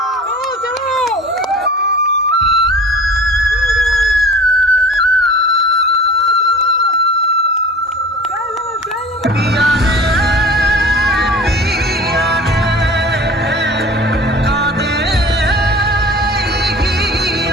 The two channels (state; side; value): normal; both; correlation 0.42